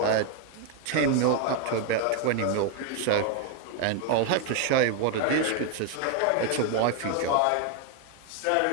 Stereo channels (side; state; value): both; different; correlation 0.01